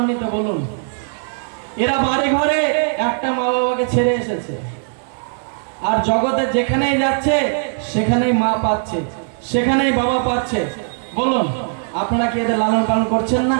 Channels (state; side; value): silent; left; digital silence